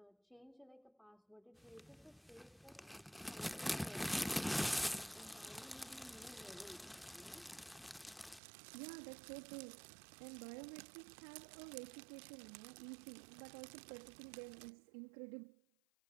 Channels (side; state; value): left; drops out; at 8.4 s